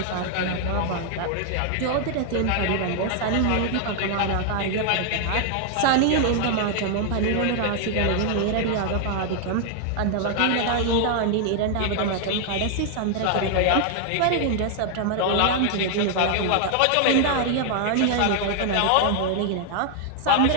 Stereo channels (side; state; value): both; different; correlation 0.00